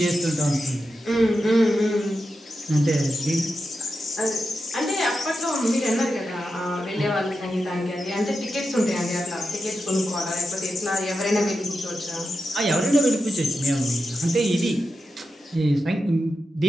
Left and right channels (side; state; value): both; normal; correlation 0.89